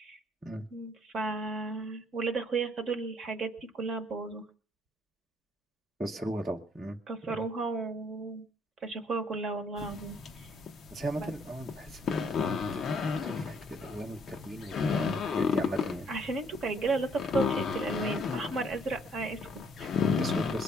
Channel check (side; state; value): both; normal; correlation 0.64